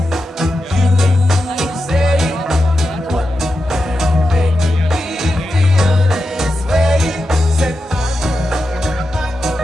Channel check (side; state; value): both; normal; correlation 0.89